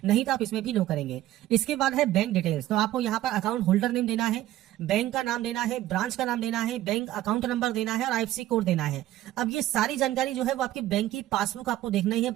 नहीं तो आप इसमें भी नो करेंगे। इसके बाद है बैंक डिटेल्स। तो आपको यहाँ पर अकाउंट होल्डर नेम देना है, बैंक का नाम देना है, ब्रांच का नाम देना है, बैंक अकाउंट नंबर देना है और आईएफएससी कोड देना है। अब ये सारी जानकारी जो है वो आपकी बैंक की पासबुक आपको देखना ही है।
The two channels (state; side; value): quieter; left; 14.3 dB